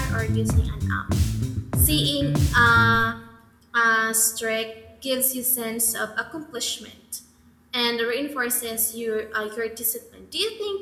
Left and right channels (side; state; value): both; identical; correlation 1.00